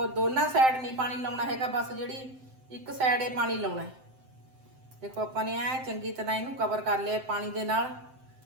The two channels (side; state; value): left; late; 7.7 ms